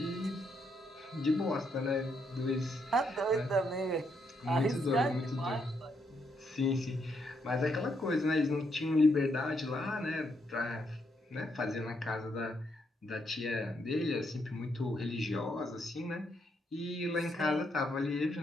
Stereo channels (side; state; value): both; normal; correlation 0.76